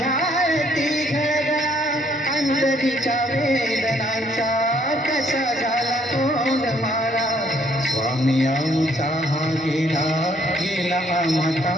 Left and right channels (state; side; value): normal; both; correlation 0.66